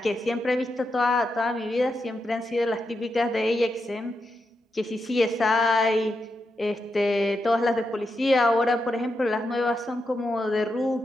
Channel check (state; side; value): normal; both; correlation 0.86